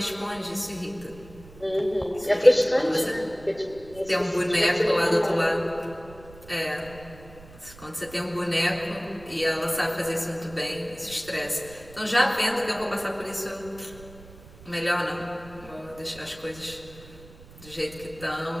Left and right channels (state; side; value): noise; right; rumble, 20 dB below the sound